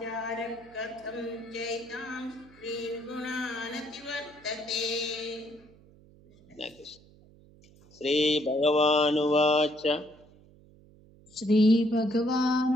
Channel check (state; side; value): noise; right; hum, 25 dB below the sound